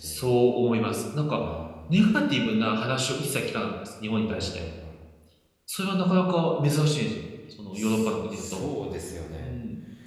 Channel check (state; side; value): identical; both; correlation 1.00